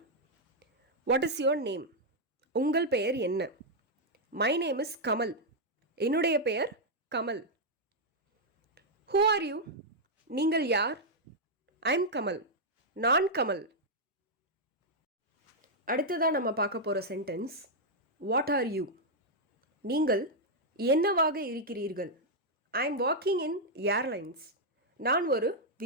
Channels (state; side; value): normal; both; correlation -0.03